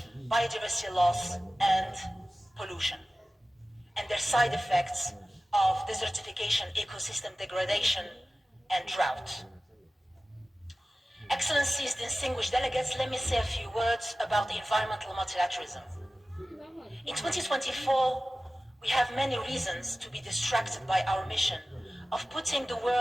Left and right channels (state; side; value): normal; both; correlation 0.97